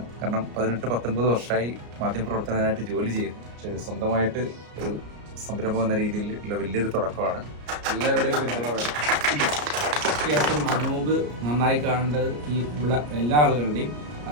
കാരണം 18-19 വർഷമായി മാധ്യമപ്രവർത്തകനായിട്ട് ജോലി ചെയ്യുന്നു. പക്ഷേ സ്വന്തമായിട്ട് ഒരു സംരംഭം എന്ന രീതിയിലുള്ള വലിയൊരു തുടക്കമാണ്. എല്ലാവരുടെയും പിന്തുണ വേണം. തീർച്ചയായിട്ടും അനൂപ് നന്നായി കാണേണ്ടത് ഈ ഉള്ള എല്ലാ ആളുകളുടെയും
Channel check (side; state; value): left; late; 34 ms